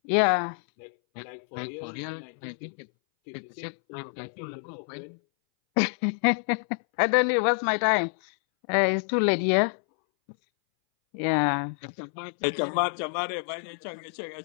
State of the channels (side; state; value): right; silent; 60 dB below the other